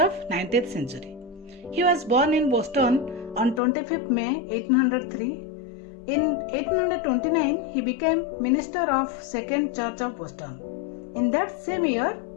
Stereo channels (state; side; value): drops out; right; at 3.6 s